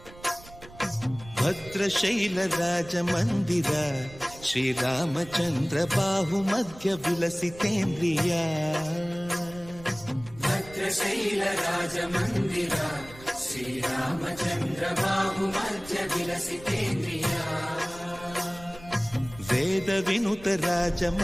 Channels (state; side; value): noise; right; rumble, 19 dB below the sound